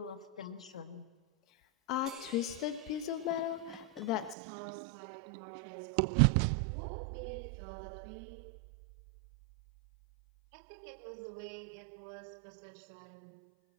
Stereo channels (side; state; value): left; drops out; at 4.4 s